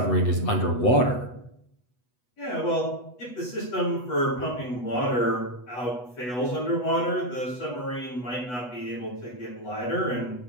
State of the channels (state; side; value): late; right; 8.1 ms